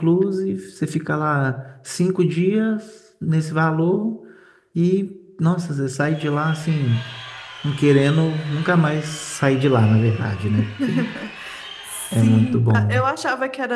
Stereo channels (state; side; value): identical; both; correlation 1.00